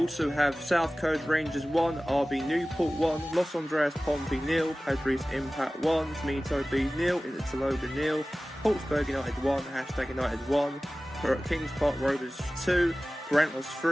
have South Coast Rangers 1, RB Newport 1, Los Andreas Pompey 0, Padres Impact 1, Smito Bees 0, Interlogan 0, Portsburg United 1, Hashtag United 1, Kings Park Rovers 2, Brentford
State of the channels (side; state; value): both; normal; correlation 0.97